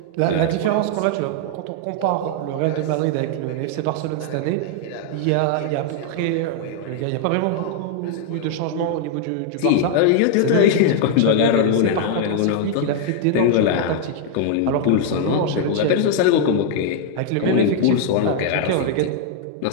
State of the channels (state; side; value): different; both; correlation 0.00